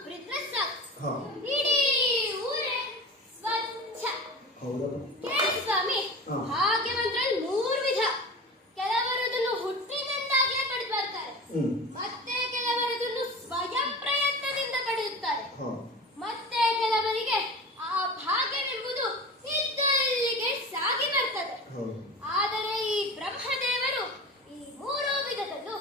ಸಾಕು ಹಾ ಇಡೀ ಊರೇ ಸ್ವಚ್ಛ ಹೌದಾ ಕೇಳಿ ಸ್ವಾಮಿ ಹಾ. ಭಾಗ್ಯವಂತರಲ್ಲಿ 3 ವಿಧ ಕೆಲವರು ಅದನ್ನು ಹುಟ್ಟಿನಿಂದಾಗಿಯೇ ಪಡೆದು ಬರ್ತಾರೆ ಹ್ಮ್ ಮತ್ತೆ ಕೆಲವರು ಅದನ್ನು ಸ್ವಯಂ ಪ್ರಯತ್ನದಿಂದ ಪಡೆಯುತ್ತಾರೆ ಹಾ ಮತ್ತೆ ಕೆಲವರಿಗೆ ಆ ಭಾಗ್ಯವೆಂಬುದು ಇದ್ದಲ್ಲಿಗೆ ಸಾಗಿ ಬರ್ತದೆ ಹೌದು ಆದರೆ ಈ ಬ್ರಹ್ಮದೇವರು ಈ 3 ವಿಧದಲ್ಲೂ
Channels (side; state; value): both; normal; correlation 0.32